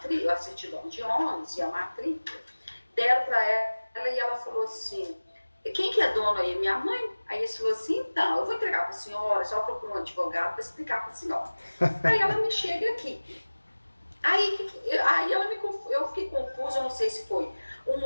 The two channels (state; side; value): inverted; both; correlation -1.00